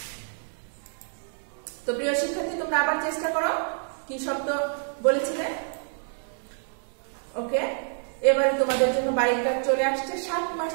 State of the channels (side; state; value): left; silent; 60 dB below the other